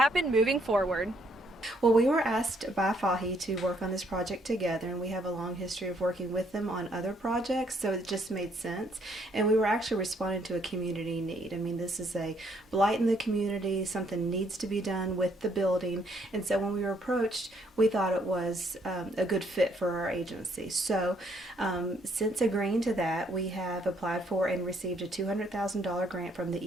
moving forward. Well, we were asked by FAHI to work on this project together, and we have a long history of working with them on other projects, so it just made sense. And we were actually responding to a community need. I mean, this is a blight in the community, something needs to be done with the building, and so when we were approached, we thought it was a good fit for our agency. So since agreeing to that, we have applied for and received a $200,000 grant from the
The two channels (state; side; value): normal; both; correlation 0.69